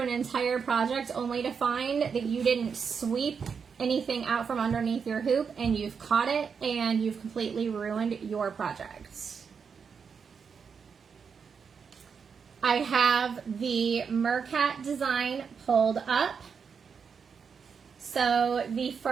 entire project only to find that you didn't sweep anything out from underneath your hoop and you've caught it and you've completely ruined your project. I have the Mercat design pulled up. So the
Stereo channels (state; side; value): quieter; left; 6.2 dB